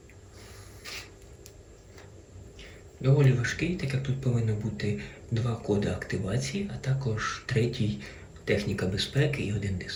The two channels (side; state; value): both; identical; correlation 1.00